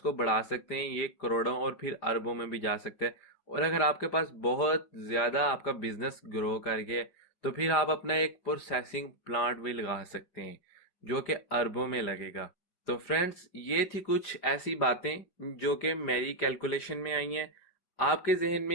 बढ़ा सकते हैं, ये करोड़ों और फिर अरबों में भी जा सकते हैं। और अगर आपके पास बहुत ज्यादा आपका बिजनेस ग्रो कर गया तो फिर आप अपना एक प्रोसेसिंग प्लांट भी लगा सकते हैं जो कि अरबों में लगेगा। तो फ्रेंड्स, ये थी कुछ ऐसी बातें जो कि मेरी कैलकुलेशन में आई हैं। आपके जहन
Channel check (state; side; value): late; right; 5.0 ms